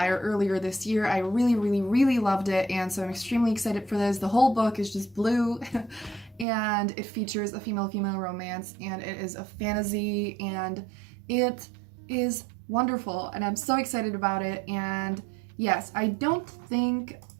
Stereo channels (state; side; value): drops out; left; at 6.5 s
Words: earlier this year. I really loved it, and so I'm extremely excited for this. The whole book is just blue, and it features a female-female romance, and it is a fantasy, and it is wonderful, and I'm so excited about it. And yes, I don't think